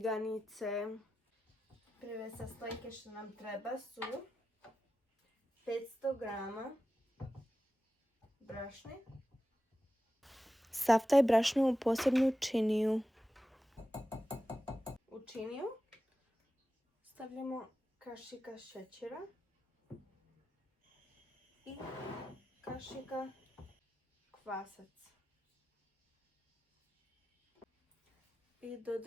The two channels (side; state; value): both; normal; correlation 0.92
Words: Prve sastojke što nam treba su 500 grama brašne. Sav taj brašno u posebnu činiju. U činiju stavljamo kašika šećera i kašika kvasac. I